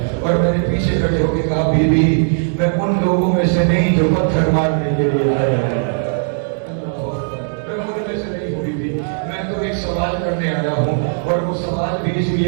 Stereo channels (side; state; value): left; silent; 67 dB below the other